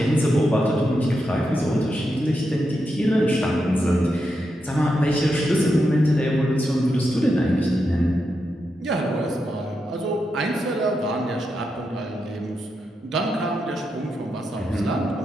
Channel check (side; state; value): both; normal; correlation 0.85